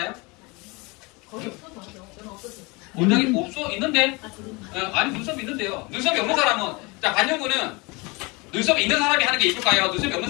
원장님 있는데? 아니 눈썹이 있는데요. 눈썹이 없는 사람은 자 반영구는 눈썹이 있는 사람이 하는 게 이쁠까요? 눈썹이 없는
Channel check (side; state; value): right; quieter; 26.8 dB